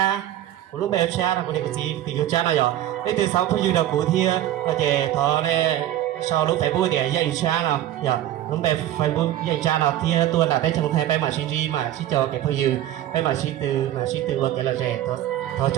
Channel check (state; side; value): quieter; left; 12.9 dB